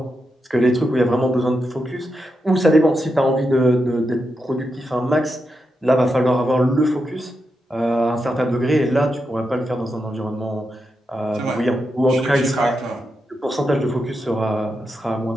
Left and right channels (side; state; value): both; normal; correlation 0.86